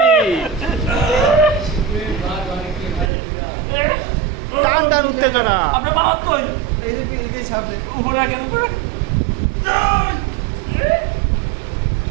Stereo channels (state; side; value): drops out; left; at 3.1 s